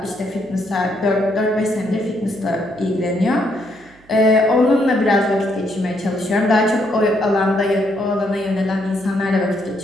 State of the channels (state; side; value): noise; right; hum, 29 dB below the sound